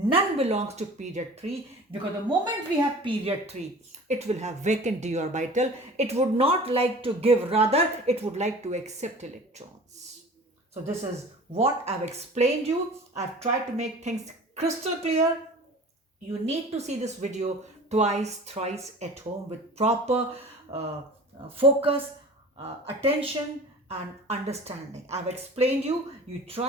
belongs to period 3, because the moment we have period 3, it will have vacant d orbital. It would not like to give, rather it would like to accept electrons. So this is what I've explained you. I've tried to make things crystal clear. You need to see this video twice, thrice at home with proper focus, attention and understanding. I've explained you. You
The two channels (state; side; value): normal; both; correlation 0.41